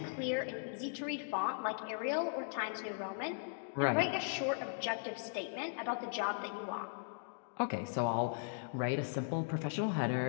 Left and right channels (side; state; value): right; silent; digital silence